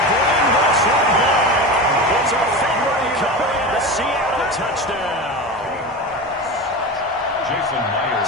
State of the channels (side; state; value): both; normal; correlation 0.26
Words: bring this one back. It's a Fenway recovery and a Seattle touchdown. Jason